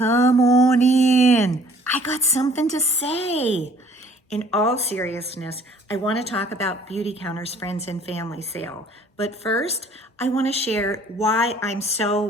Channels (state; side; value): normal; both; correlation 0.56